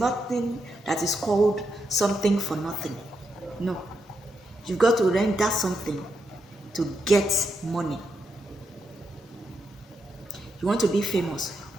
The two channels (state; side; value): normal; both; correlation 0.82